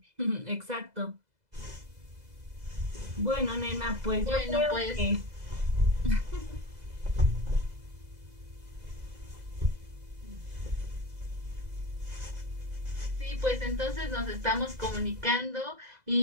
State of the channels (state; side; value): late; left; 2.0 ms